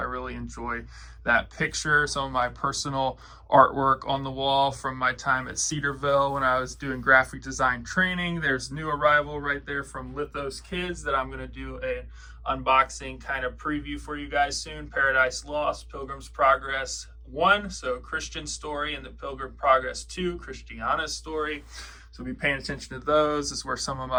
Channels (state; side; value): identical; both; correlation 1.00